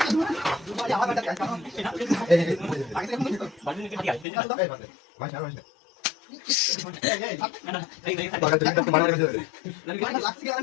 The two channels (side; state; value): right; drops out; at 4.2 s